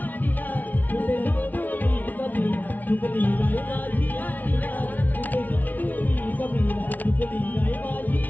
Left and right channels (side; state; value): right; late; 0.078 ms